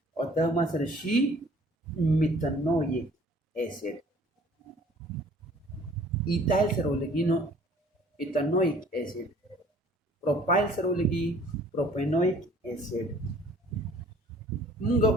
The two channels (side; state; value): both; normal; correlation 0.54